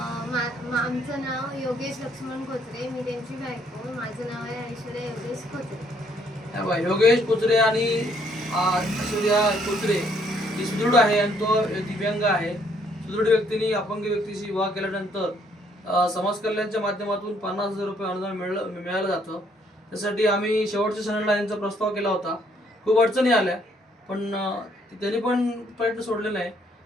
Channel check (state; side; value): normal; both; correlation 0.67